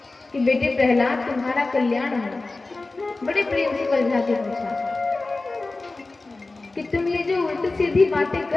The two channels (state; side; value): quieter; right; 3.3 dB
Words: कि बेटे प्रहलाद तुम्हारा कल्याण हो। बड़े प्रेम से समझा के पूछा कि तुम ये जो उल्टी सीधी बातें